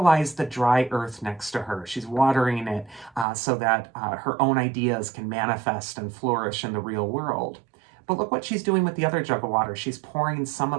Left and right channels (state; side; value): drops out; left; at 3.2 s